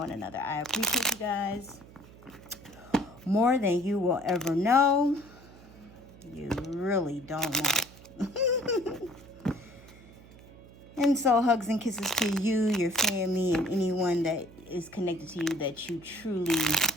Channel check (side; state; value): right; noise; hum, 21 dB below the sound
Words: another. I appreciate you guys more than you will ever know. You really don't know. And so hugs and kisses to you, your family, and anyone that is connected to you that you truly